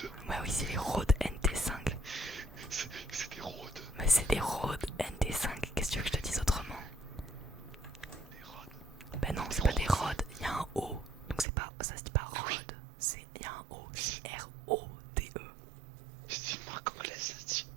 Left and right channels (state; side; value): drops out; left; at 11.5 s